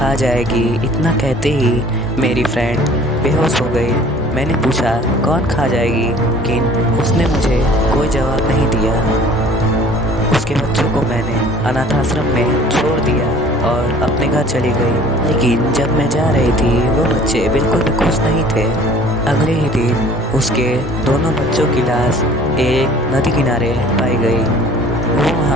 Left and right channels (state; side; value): normal; both; correlation 0.50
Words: जाएगी। इतना कहते ही मेरी फ्रेंड बेहोश हो गई। मैंने पूछा कौन खा जाएगी, लेकिन उसने मुझे कोई जवाब नहीं दिया। उसके बच्चों को मैंने अनाथ आश्रम में छोड़ दिया और अपने घर चली गई। लेकिन जब मैं जा रही थी वो बच्चे बिल्कुल भी खुश नहीं थे। अगले ही दिन उसके दोनों बच्चों की लाश एक नदी किनारे पाई गई। वो